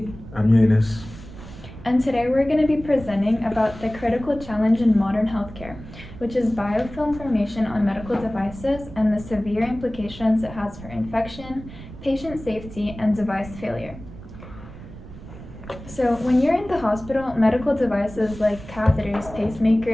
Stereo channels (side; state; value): right; noise; rumble, 15 dB below the sound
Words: I'm Eunice. And today we're going to be presenting about the critical challenge in modern healthcare, which is biofilm formation on medical devices and the severe implications it has for infection, patient safety, and device failure. So, when you're in the hospital, medical devices like catheters,